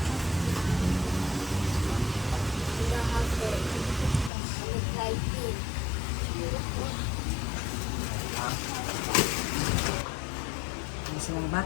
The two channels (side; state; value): right; drops out; at 4.3 s